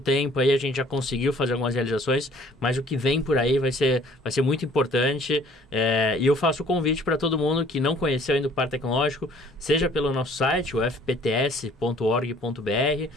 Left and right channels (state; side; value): normal; both; correlation 0.56